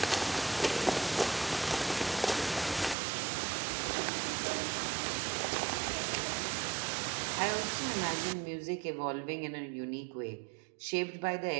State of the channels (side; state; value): left; drops out; at 3.0 s